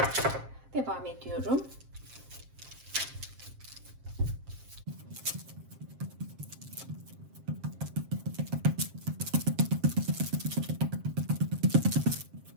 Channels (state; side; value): late; left; 7.5 ms